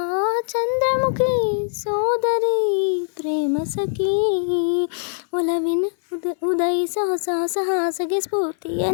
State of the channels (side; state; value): right; silent; 59 dB below the other